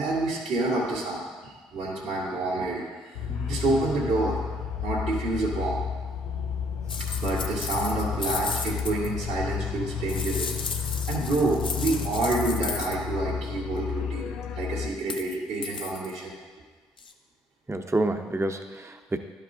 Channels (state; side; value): normal; both; correlation 0.63